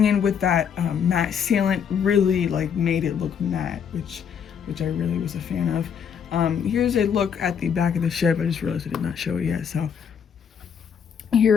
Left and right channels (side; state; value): right; quieter; 7.5 dB